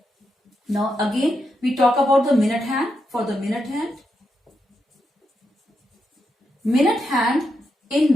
Now again we talk about the minute hand. For the minute hand,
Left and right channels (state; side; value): normal; both; correlation 0.84